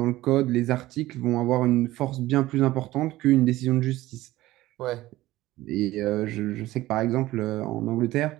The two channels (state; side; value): quieter; left; 16.8 dB